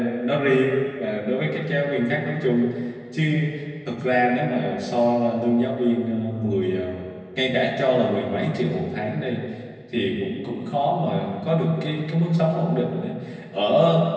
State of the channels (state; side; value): identical; both; correlation 1.00